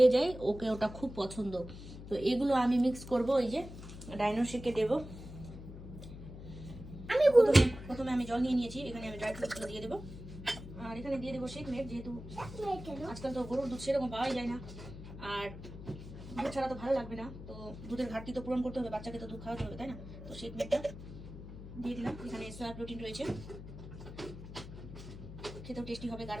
যায়, ওকে ওটা খুব পছন্দ। তো এগুলো আমি মিক্স করব, এই যে ডাইনো শেকে দেবো। আমি প্রথমে আমি জল নিয়ে নিয়েছি, এখানে আমি ড্রাই ফ্রুটসগুলো দিয়ে দেবো। আর এখানে দিয়ে দেবো শেক মেড, যেহেতু আজকাল তো গরুর দুধ সেরকম পাওয়াই যায় না, আর দুধ ছাড়া তো ভালো লাগবে না। তো দুধের ঘাটতি তো পূরণ করতে হবে, বাচ্চাকে তো দুধ খাওয়াতে হবে, তাই না? তো শেক মেডটা দিয়ে দিলাম। এখানে সোয়া প্রোটিন রয়েছে, খেতেও টেস্টি হবে,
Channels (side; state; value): left; noise; hum, 12 dB below the sound